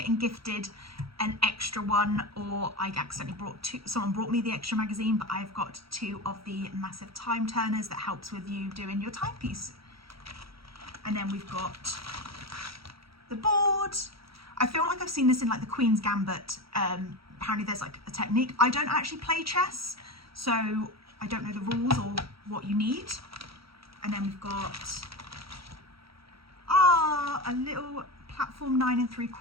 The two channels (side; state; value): left; late; 0.75 ms